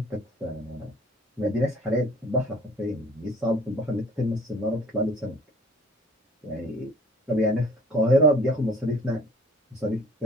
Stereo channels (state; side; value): normal; both; correlation 0.52